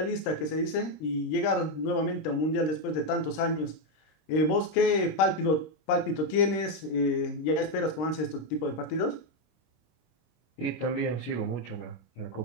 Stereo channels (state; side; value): late; right; 26 ms